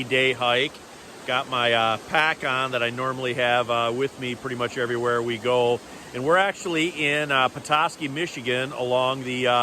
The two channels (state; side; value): identical; both; correlation 1.00